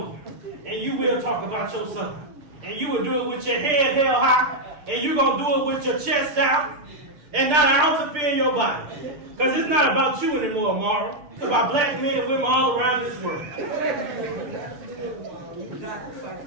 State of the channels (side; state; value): left; late; 6.7 ms